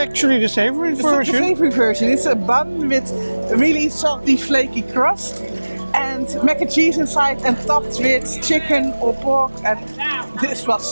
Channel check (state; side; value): inverted; both; correlation -1.00